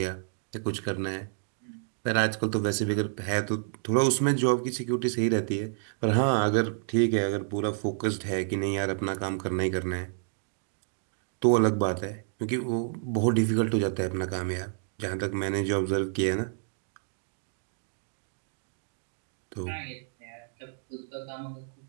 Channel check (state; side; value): silent; left; digital silence